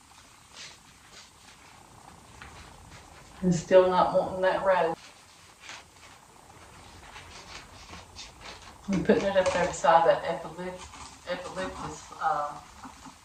And still not wanting that rose. I'm putting it up there beside that eucalyptus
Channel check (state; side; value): identical; both; correlation 1.00